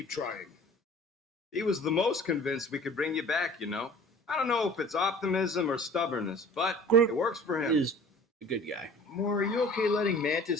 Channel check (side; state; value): both; normal; correlation 0.46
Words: trying. He was the most convinced we could bring you back, you know. I don't know if it's optimism or stubbornness, but Groot it works for him. Is a good guy. Moore, are you okay letting